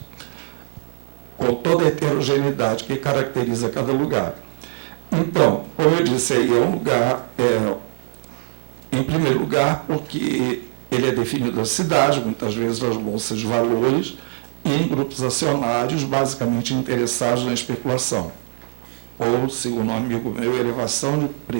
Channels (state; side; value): silent; left; digital silence